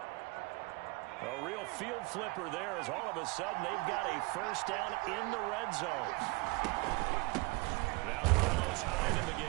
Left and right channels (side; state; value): left; quieter; 24.6 dB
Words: A real field flipper there as all of a sudden they've got a first down in the red zone. Now Carlos Hyde in the